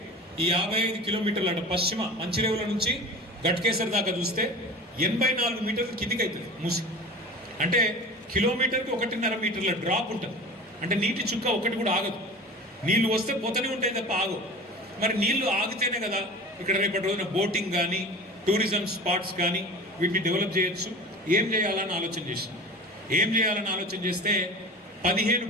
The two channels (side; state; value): both; normal; correlation 0.36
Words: ఈ 55 కిలోమీటర్లు అంటే పశ్చిమ మంచిరేవుల నుంచి గట్కేసర్ దాకా చూస్తే 84 మీటర్లు కిందికి అవుతుంది మూసి అంటే కిలోమీటర్కి 1.5 మీటర్ల డ్రాప్ ఉంటుంది అంటే నీటి చుక్క ఒకటి కూడా ఆగదు నీళ్లు వస్తే పోతూనే ఉంటాయి తప్ప ఆగవు మరి నీళ్లు ఆగితేనే కదా ఇక్కడ రేపటి రోజున బోటింగ్ కానీ టూరిజం స్పాట్స్ కానీ వీటిని డెవలప్ చేయొచ్చు ఏం చేయాలని ఆలోచన చేస్తే 15